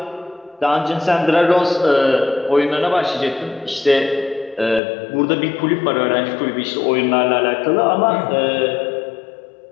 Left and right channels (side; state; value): right; drops out; at 4.8 s